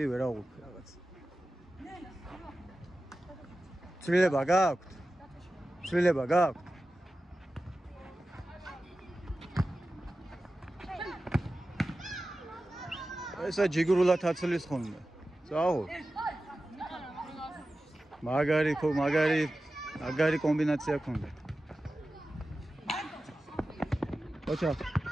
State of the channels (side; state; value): both; normal; correlation 0.94